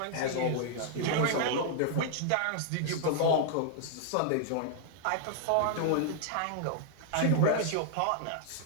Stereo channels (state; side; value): different; both; correlation -0.01